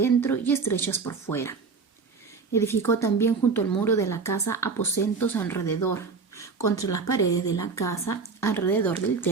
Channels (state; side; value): quieter; left; 4.8 dB